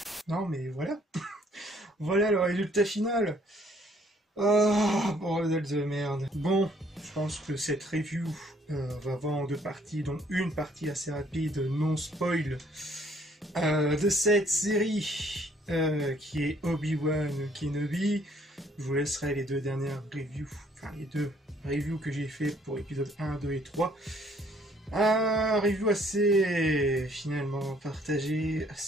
Non, mais voilà. Voilà le résultat final. Ah, bordel de merde. Bon, je pense que cette review va avoir en deux parties, dont une partie assez rapide, non spoil, de cette série qui est Obi-Wan Kenobi. Je vous laisserai les deux dernières reviews, enfin les deux reviews que j'ai fait pour épisodes 1, 2 et 3. Un review assez finalement partagé,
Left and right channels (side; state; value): both; normal; correlation 0.63